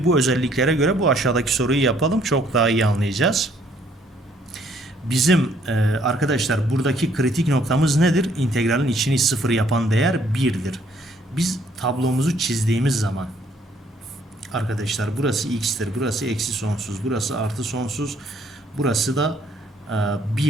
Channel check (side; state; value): both; normal; correlation 0.65